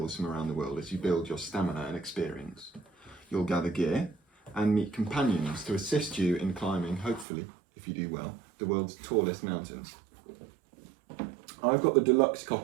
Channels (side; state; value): left; drops out; at 7.2 s